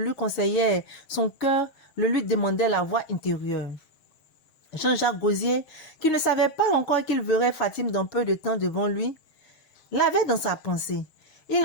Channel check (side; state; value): right; late; 6.4 ms